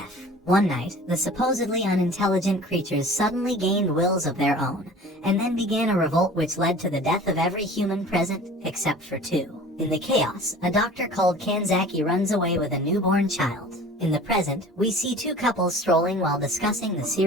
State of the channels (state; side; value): normal; both; correlation 0.43